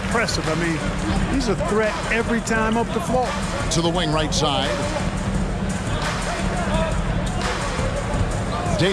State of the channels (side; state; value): both; identical; correlation 1.00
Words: I mean, he's a threat every time up the floor. To the wing right side.